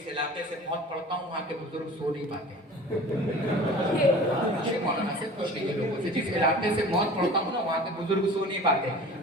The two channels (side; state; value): both; normal; correlation 0.41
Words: علاقے سے موت پڑھتا ہوں وہاں کے بزرگ سو نہیں پاتے مولانا سے پوچھ لیجیے لوگوں سے جس علاقے سے موت پڑھتا ہوں نا وہاں کے بزرگ سو نہیں پاتے